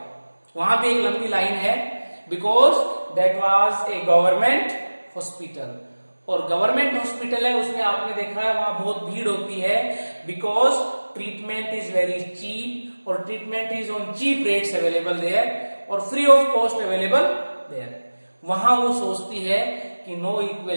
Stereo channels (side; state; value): both; inverted; correlation -1.00